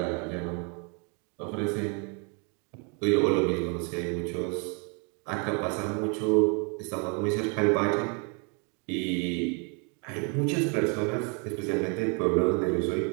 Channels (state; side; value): quieter; left; 35.7 dB